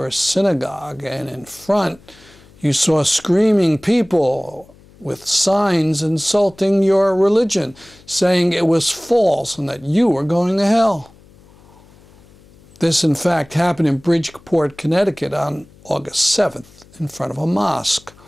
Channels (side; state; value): left; noise; hum, 26 dB below the sound